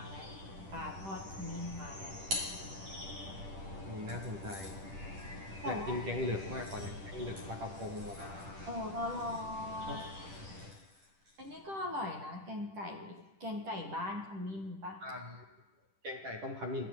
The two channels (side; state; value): left; late; 10 ms